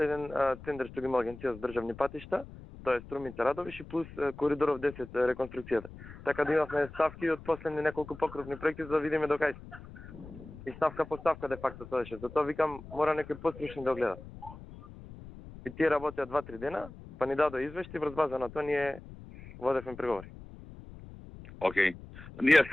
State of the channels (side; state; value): left; noise; rumble, 16 dB below the sound